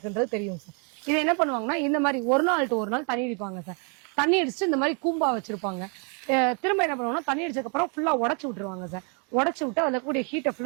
தெரியும் சார். இது என்ன பண்ணுவாங்கன்னா இந்த மாதிரி ஒரு நாள் டு ஒரு நாள் தண்ணி அடிப்பாங்க சார். தண்ணி அடிச்சுட்டு இந்த மாதிரி கூம்பா வச்சிருப்பாங்க. திரும்ப என்ன பண்ணுவாங்கன்னா தண்ணி அடிச்சதுக்கு அப்புறம் ஃபுல்லா உடச்சு விட்டுருவாங்க சார். உடச்சு விட்டு அதுல கூடிய ஹீட்டை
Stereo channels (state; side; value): quieter; left; 37.5 dB